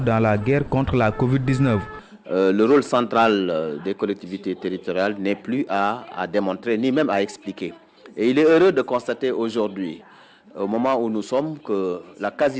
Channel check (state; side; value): identical; both; correlation 1.00